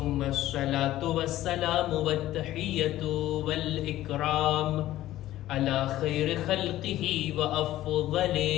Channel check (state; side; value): quieter; right; 14.6 dB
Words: الصلاة والسلام والتحية والإكرام على خير خلقه وأفضل